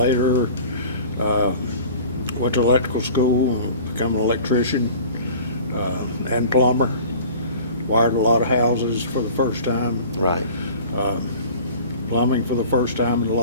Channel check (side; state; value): both; inverted; correlation -0.43